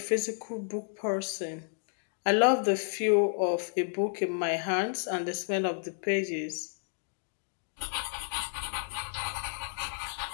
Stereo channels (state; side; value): silent; right; digital silence